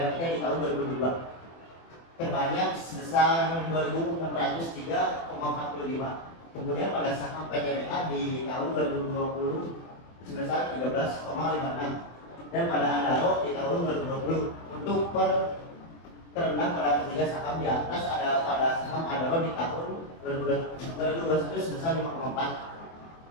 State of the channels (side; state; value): right; late; 24 ms